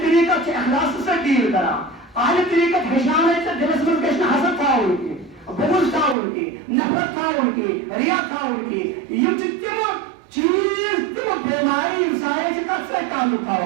طریقت سے اخلاص سے ڈیل کرا آدھی طریقت ہشانے سے دلس من کشن حسد تھا ان کی بغض تھا ان کی نفرت تھا ان کی ریا تھا ان کی یہ تم چیز تم بیماری انسانی سے کب سے تعلق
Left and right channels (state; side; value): drops out; left; at 6.2 s